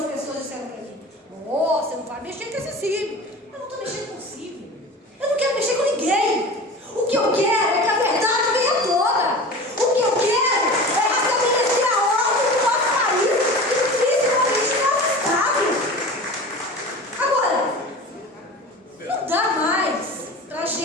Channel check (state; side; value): normal; both; correlation 0.35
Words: pessoas disseram para mim: oh, você não vai mexer com esse Sírio. Eu não estou mexendo com o Sírio, eu não quero mexer com ninguém. O que eu quero é que a verdade venha à tona. O que eu quero é restabelecer a ordem do nosso país, principalmente no nosso estado. Agora, não dá mais para a